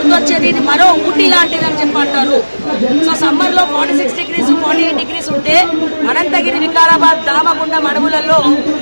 ఇది మరో ఊటీ లాంటిది అని చెప్పి అంటారు. సో సమ్మర్ లో 46 degrees 48 degrees ఉంటే అనంతగిరి వికారాబాద్ రామగుండం అడవులలో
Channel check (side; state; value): both; inverted; correlation -1.00